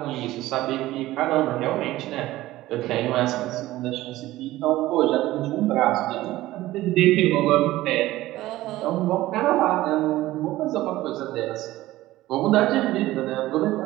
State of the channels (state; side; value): quieter; left; 16.5 dB